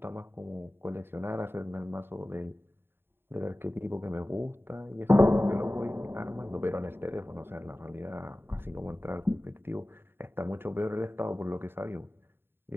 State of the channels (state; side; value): late; left; 0.11 ms